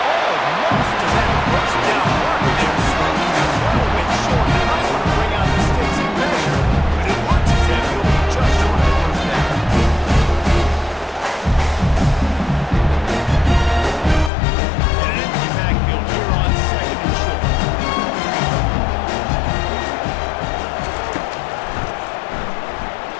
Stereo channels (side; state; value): right; drops out; at 14.3 s